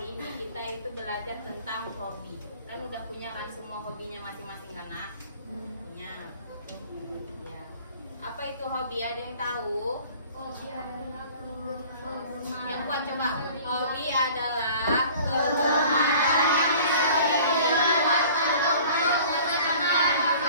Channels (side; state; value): both; inverted; correlation -0.47